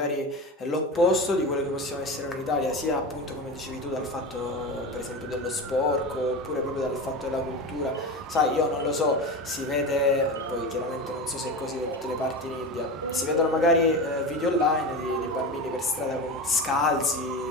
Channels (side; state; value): both; normal; correlation 0.25